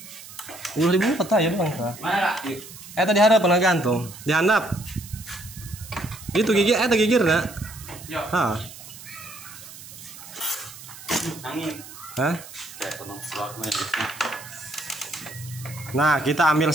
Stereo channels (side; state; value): right; noise; hiss, 16 dB below the sound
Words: Udah dibuka tadi doang Pak. Mana Kak? Tadi ada pernah gantung, dihandap. Itu gigir, gigir nak? Ya. Hah? Angin. Hah? Ya, tenang selamat. Nah, kita ambil